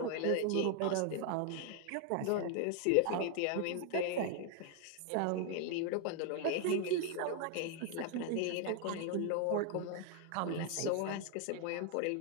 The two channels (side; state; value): both; different; correlation 0.00